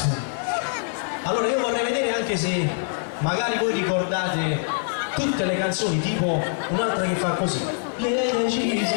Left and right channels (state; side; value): silent; right; digital silence